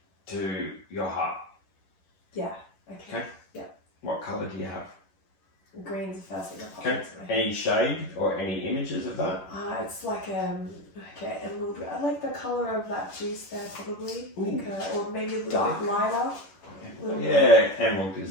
to your heart? Yeah. Okay. Okay. Yeah. What colour do you have? Green's the first thing that pops Okay. into my head. Any shade or any images of that? It's like emerald. I like the colour of that juice there, probably. Ooh. Like, or maybe a little Dark. bit lighter. Little bit. Yeah, emerald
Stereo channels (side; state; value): right; late; 11 ms